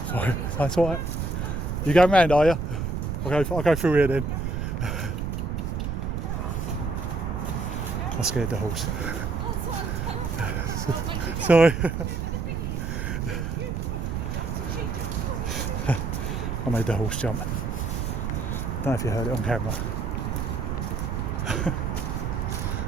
sorry, that's alright. You going round, are you? I'll go through here then. I scared the horse. Sorry. I made the horse jump. I don't know if you heard it on camera. I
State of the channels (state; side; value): noise; right; rumble, 2 dB below the sound